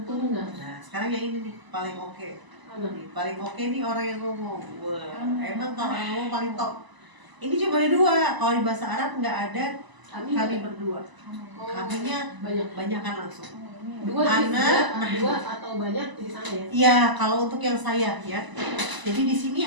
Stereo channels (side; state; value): left; late; 1.0 ms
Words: Nah, sekarang yang ini nih paling oke. Mana? Nih, paling oke nih orang yang ngomong. Wah, emang kalau yang ngomong paling top. Ini cuma ada 2. Kalau di bahasa Arab nggak ada kami berdua. Oh, Kaminya banyak. banyakan langsung. 2 Anak, jadi 2 atau banyak di sana ya? Iya, kalau untuk yang saya ya. Jadi di sini